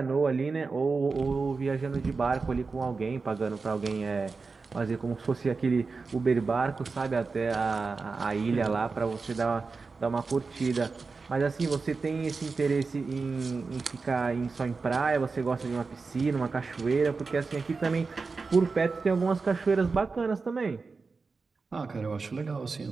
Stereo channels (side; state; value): left; quieter; 4.4 dB